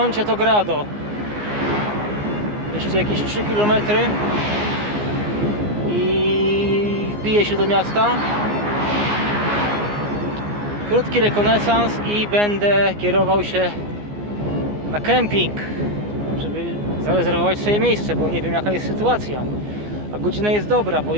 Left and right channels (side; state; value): left; late; 14 ms